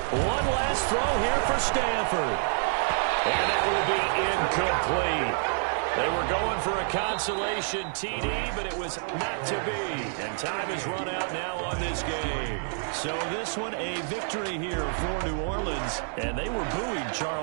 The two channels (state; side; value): silent; left; digital silence